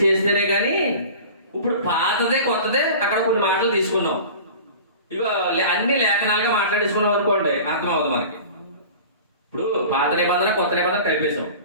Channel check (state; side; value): inverted; both; correlation -0.39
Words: చేస్తేనే కానీ. ఇప్పుడు పాతదే కొత్తదే అక్కడ కొన్ని మాటలు తీసుకున్నాం, ఇక అన్ని లేఖనాలుగా మాట్లాడేసుకున్నాం అనుకోండి, అర్థమవుతుంది మనకి. ఇప్పుడు పాత నిబంధన కొత్త నిబంధన కలిపేశాం.